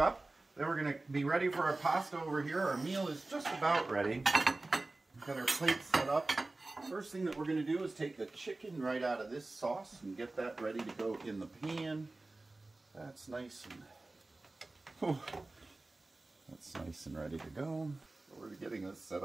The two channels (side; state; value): left; quieter; 3.1 dB